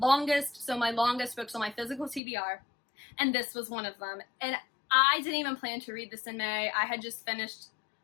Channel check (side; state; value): right; drops out; at 2.2 s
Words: so my longest books on my physical TBR, and this was one of them. And I didn't even plan to read this in May. I had just finished